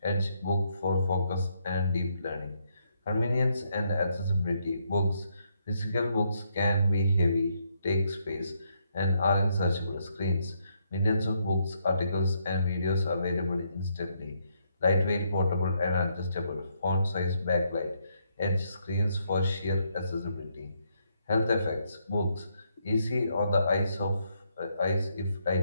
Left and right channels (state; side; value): inverted; both; correlation -0.75